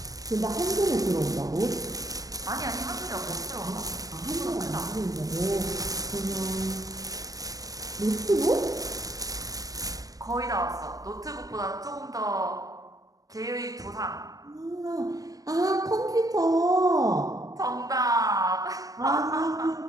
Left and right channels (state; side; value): late; left; 0.18 ms